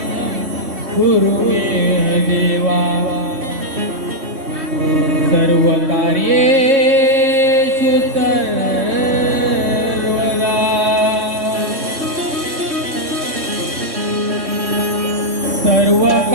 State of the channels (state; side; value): late; left; 3.2 ms